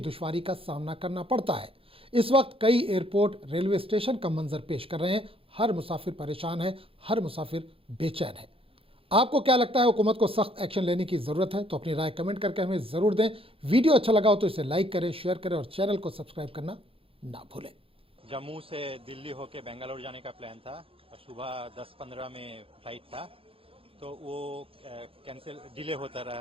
का सामना करना पड़ता है। इस वक्त कई एयरपोर्ट रेलवे स्टेशन का मंजर पेश कर रहे हैं। हर मुसाफिर परेशान है, हर मुसाफिर बेचैन है। आपको क्या लगता है, हुकूमत को सख्त एक्शन लेने की जरूरत है? तो अपनी राय कमेंट करके हमें जरूर दें। वीडियो अच्छा लगा हो तो इसे लाइक करें, शेयर करें और चैनल को सब्सक्राइब करना ना भूलें। जम्मू से दिल्ली होके बेंगलोर जाने का प्लान था और सुबह 10:15 में फ्लाइट था, तो वो कैंसिल डिले होता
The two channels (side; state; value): left; late; 0.27 ms